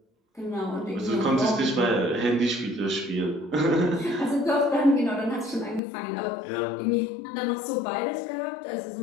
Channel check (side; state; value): right; drops out; at 5.8 s